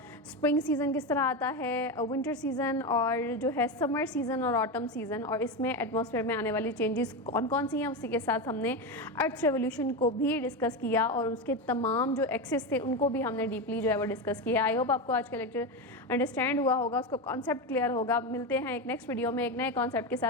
स्प्रिंग सीज़न किस तरह आता है, विंटर सीज़न और जो है समर सीज़न और ऑटम सीज़न, और इसमें एटमॉस्फेयर में आने वाली चेंजेस कौन कौन सी हैं। उसी के साथ हमने अर्थ रेवोल्यूशन को भी डिस्कस किया और उसके तमाम जो एक्सेस थे उनको भी हमने डीपली जो है वो डिस्कस किया। आई होप आपको आज का लेक्चर अंडरस्टैंड हुआ होगा, उसको कॉन्सेप्ट क्लियर होगा। मिलते हैं एक नेक्स्ट वीडियो में एक नए कॉन्सेप्ट के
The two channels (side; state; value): both; normal; correlation 0.16